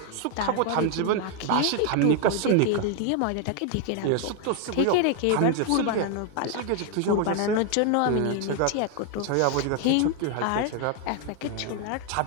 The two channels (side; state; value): both; different; correlation 0.00